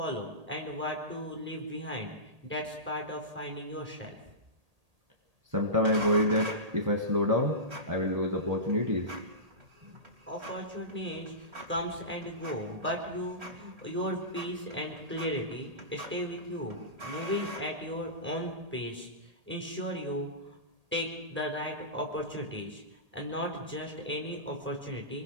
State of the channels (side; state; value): left; late; 1.8 ms